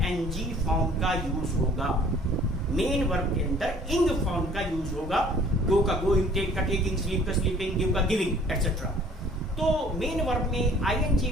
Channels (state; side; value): normal; both; correlation 0.54